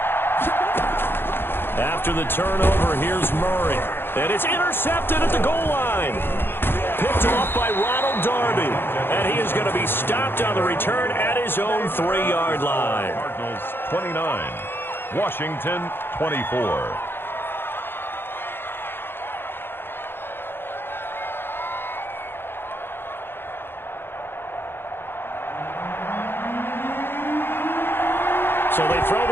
After the turnover, here's Murray. And it's intercepted at the goal line. Picked off by Ronald Darby. And he is going to be stopped on the return at his own 3-yard line. Cardinals 29, Washington 24. So they throw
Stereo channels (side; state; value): right; late; 0.10 ms